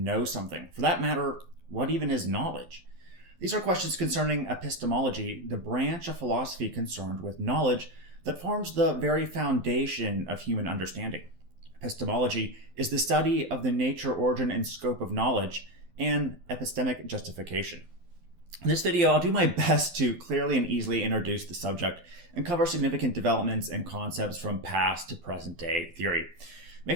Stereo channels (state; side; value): late; left; 12 ms